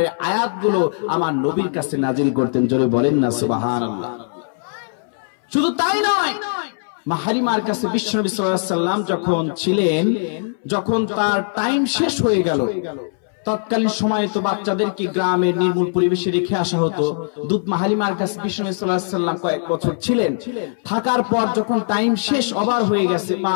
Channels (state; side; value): silent; right; 63 dB below the other